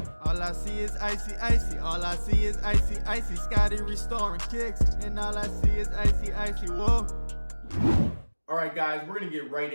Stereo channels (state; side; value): inverted; both; correlation -1.00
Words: All I see is icy, icy. All I see is icy, icy. Scotty restoring kicks, and all I see is icy, icy. Whoa. Alright guys, we're going to get right